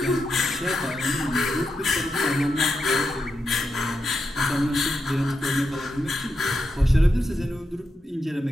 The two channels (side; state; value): both; normal; correlation 0.86